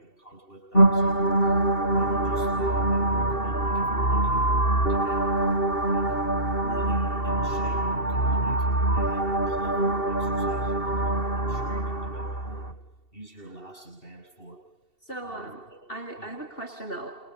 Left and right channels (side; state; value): right; late; 2.7 ms